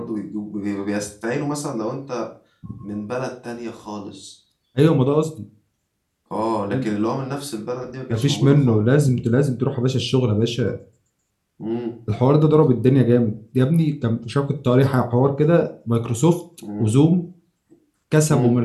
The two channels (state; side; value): identical; both; correlation 1.00